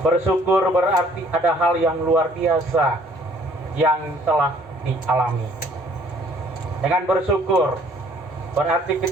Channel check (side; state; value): both; normal; correlation 0.58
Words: berarti ada hal yang luar biasa yang telah dialami. Dengan bersyukur berarti